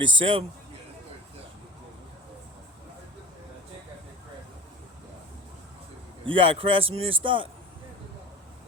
Yeah, that's 37. You got a Craftsman in stock? No,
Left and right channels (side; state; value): both; normal; correlation 0.35